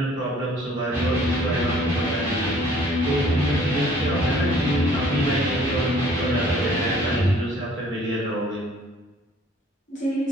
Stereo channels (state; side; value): normal; both; correlation 0.56